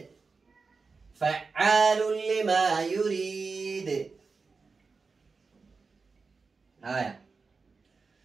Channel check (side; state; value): left; quieter; 4.5 dB